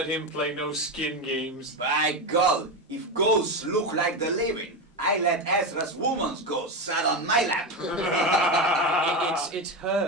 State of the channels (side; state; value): both; normal; correlation 0.16